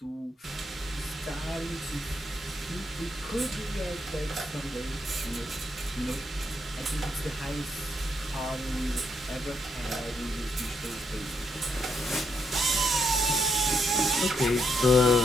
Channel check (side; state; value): both; normal; correlation 0.77